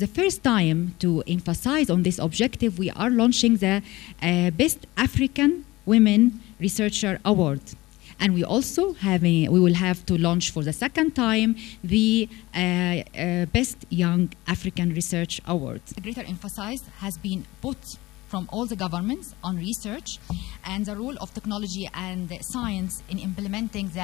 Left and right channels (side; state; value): right; quieter; 19.7 dB